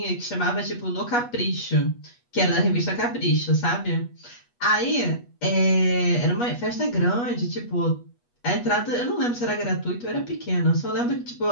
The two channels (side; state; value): right; late; 8.3 ms